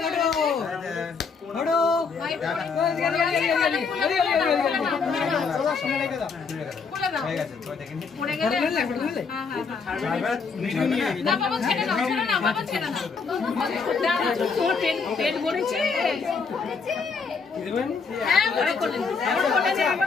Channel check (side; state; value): right; quieter; 5.2 dB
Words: পড়ে গেলে না বাবা ছেড়ে দাও, ছেড়ে না বাবা, ছেড়ে না। তোমার পেট ভরেছে? হ্যাঁ ওরা কোলে নে, ওরা কোলে নে,